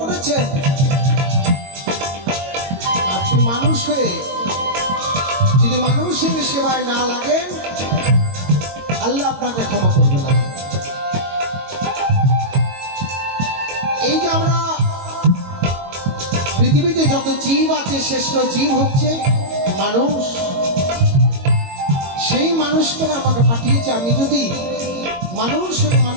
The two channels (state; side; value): late; left; 22 ms